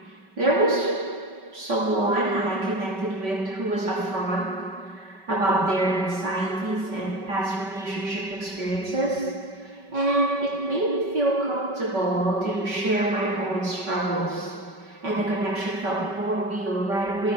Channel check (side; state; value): left; late; 5.2 ms